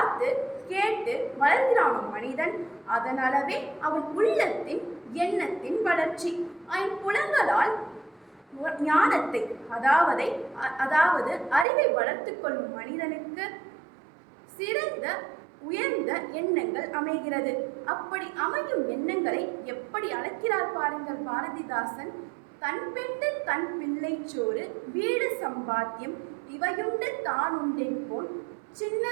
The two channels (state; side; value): drops out; left; at 11.7 s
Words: கேட்டு வளர்கிறானோ மனிதன், அதனாலவே அவன் உள்ளத்தின் எண்ணத்தின் வளர்ச்சி. ஐம்புலங்களால் ஞானத்தை அதாவது அறிவை வளர்த்து கொள்ளும் மனிதனுக்கு சிறந்த உயர்ந்த எண்ணங்கள் அமைகிறது. அப்படி அமையும் எண்ணங்களை எப்படி அழைக்கிறார் பாருங்கள் பாரதிதாசன். தன் பெண்டு தன் பிள்ளை சோறு, வீடு சம்பாத்தியம், இவையுண்டு தான் உண்டென் போல்,